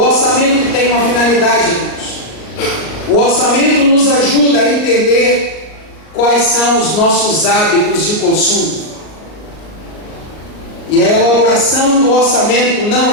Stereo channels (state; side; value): late; right; 38 ms